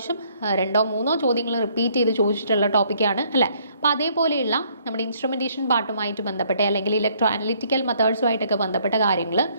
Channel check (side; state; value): both; inverted; correlation -0.65